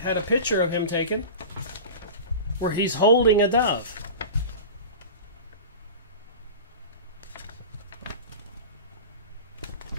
had a picture of him taken where he's holding a dove.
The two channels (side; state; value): both; inverted; correlation -0.31